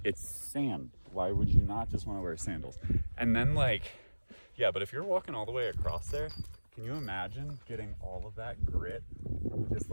it's sand. Why would you not just want to wear sandals? And then like, yeah, but if you're walking all the way across there, can you imagine getting all of that grit just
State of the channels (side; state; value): both; inverted; correlation -1.00